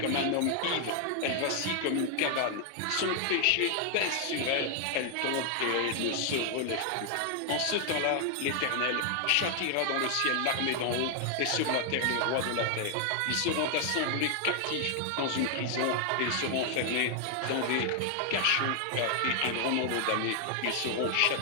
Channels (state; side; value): different; both; correlation 0.00